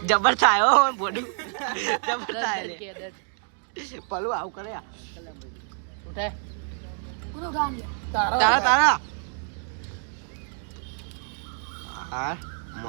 જબર થાય હો બોડું. જબર થાય લે ભલું આવું કરે. પૂરું ગામ તારા તારા હા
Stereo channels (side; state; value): left; silent; 57 dB below the other